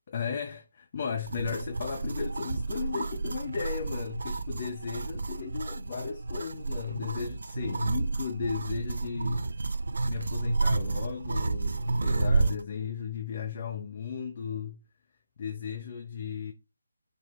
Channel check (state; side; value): inverted; both; correlation -0.83